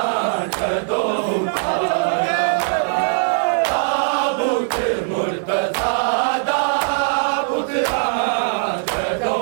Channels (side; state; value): left; silent; 66 dB below the other